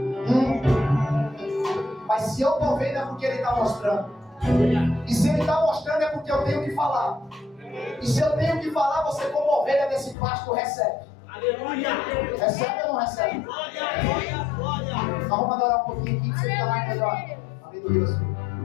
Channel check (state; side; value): drops out; right; at 10.2 s